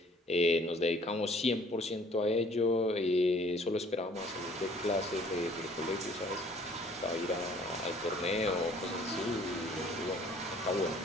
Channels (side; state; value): both; normal; correlation 0.56